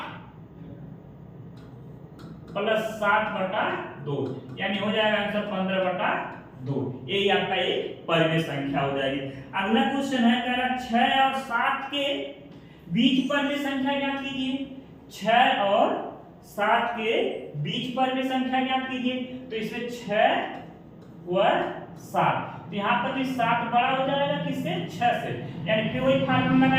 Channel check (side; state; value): both; identical; correlation 1.00